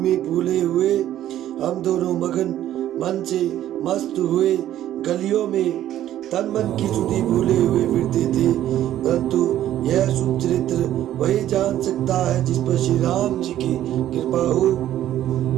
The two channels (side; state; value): left; quieter; 12.4 dB